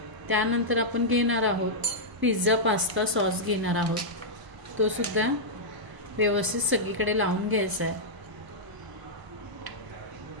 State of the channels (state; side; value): late; left; 1.0 ms